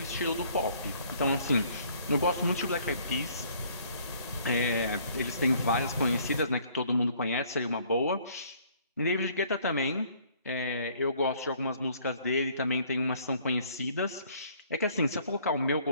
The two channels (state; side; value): inverted; both; correlation -0.60